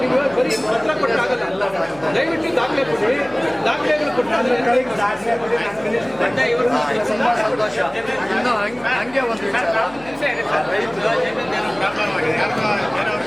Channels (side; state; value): left; noise; hum, 23 dB below the sound